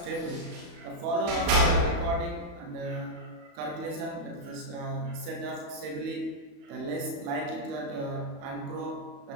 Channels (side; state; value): left; late; 34 ms